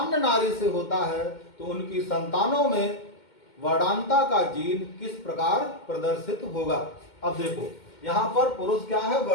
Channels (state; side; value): late; right; 2.1 ms